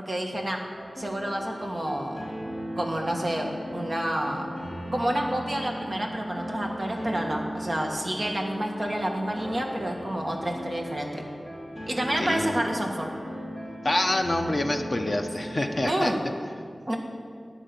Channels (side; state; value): both; normal; correlation 0.97